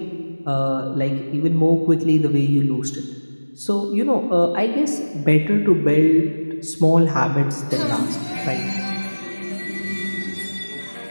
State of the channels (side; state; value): both; inverted; correlation -1.00